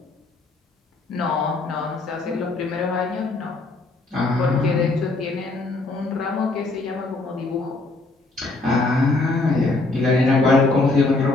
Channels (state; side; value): quieter; right; 3.3 dB